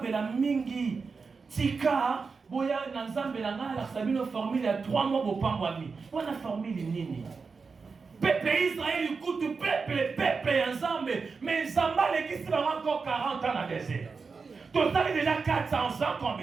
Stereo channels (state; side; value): quieter; left; 4.8 dB